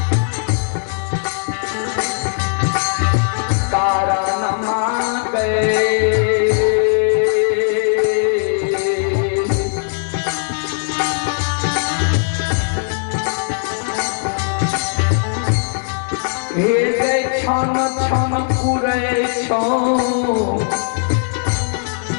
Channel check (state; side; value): silent; right; 65 dB below the other